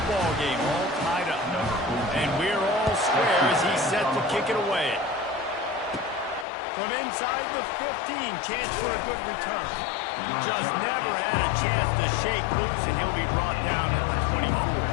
ball game, all tied up. And we're all square as he's set to kick it away. From inside the 15, chance for a good return. Just never had a chance to shake loose, and he'll be brought down at the 24.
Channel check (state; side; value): drops out; right; at 6.5 s